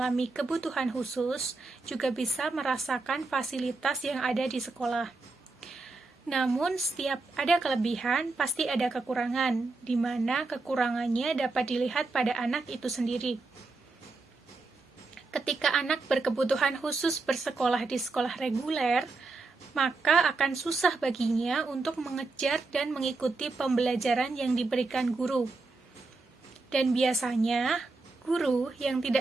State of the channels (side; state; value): left; quieter; 3.6 dB